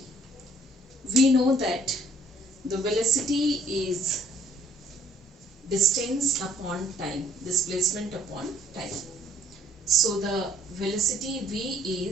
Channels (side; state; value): both; normal; correlation 0.61